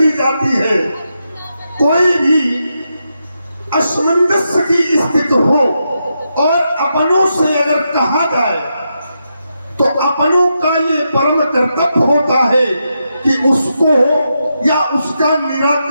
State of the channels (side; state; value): both; inverted; correlation -0.85